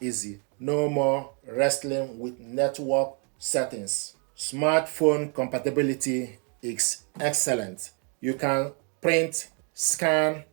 No more wrestling with network settings. Smartphone compatibility is excellent. You can print, scan,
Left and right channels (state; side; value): quieter; left; 38.4 dB